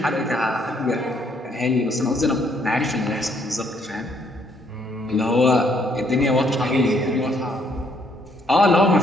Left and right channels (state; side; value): normal; both; correlation 0.68